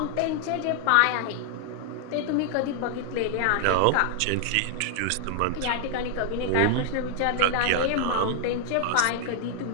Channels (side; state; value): both; different; correlation 0.00